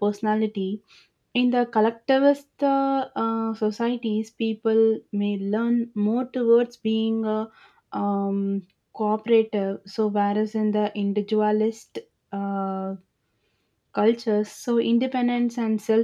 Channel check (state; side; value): identical; both; correlation 1.00